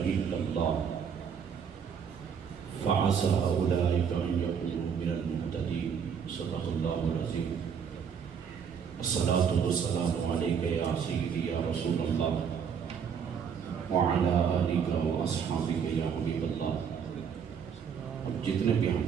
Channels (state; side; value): quieter; left; 7.2 dB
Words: الله فعسى أولئك أن يكونوا من المهتدين. صدق الله العظيم. الصلاة والسلام عليك يا سيدي يا رسول الله وعلى آلك وأصحابك يا حبيب الله. اب جتنے بھی